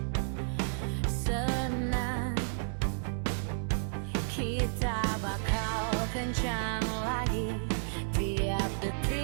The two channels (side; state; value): left; silent; digital silence